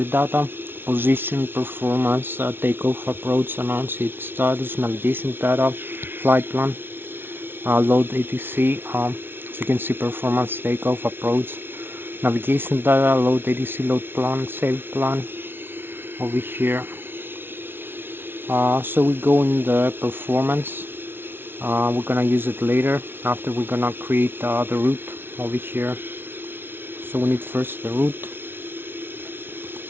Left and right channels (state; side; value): late; left; 0.11 ms